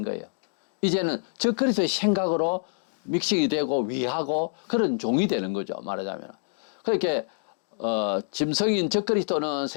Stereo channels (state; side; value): silent; right; digital silence